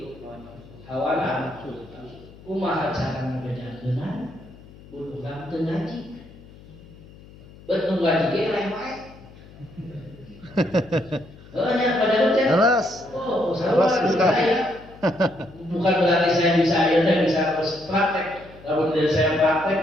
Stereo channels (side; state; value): left; noise; hum, 21 dB below the sound